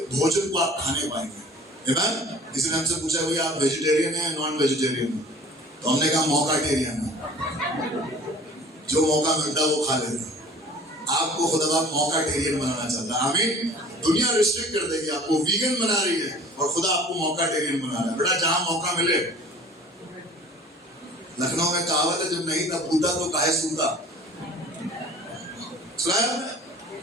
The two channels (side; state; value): both; normal; correlation 0.47